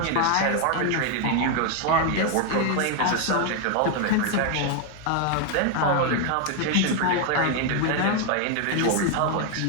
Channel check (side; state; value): both; different; correlation 0.01